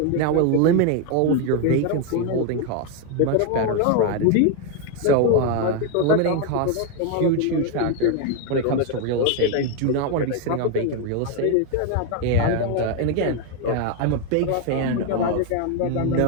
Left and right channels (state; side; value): different; both; correlation 0.01